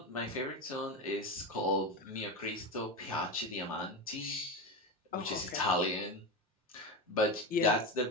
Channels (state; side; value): normal; both; correlation 0.18